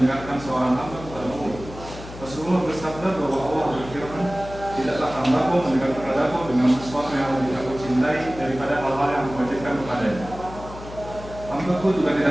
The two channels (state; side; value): noise; left; hum, 14 dB below the sound